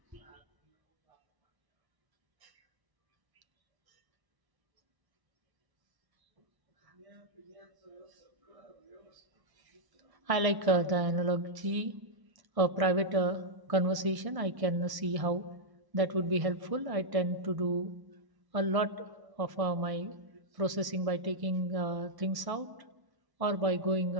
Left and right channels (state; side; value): late; left; 1.0 ms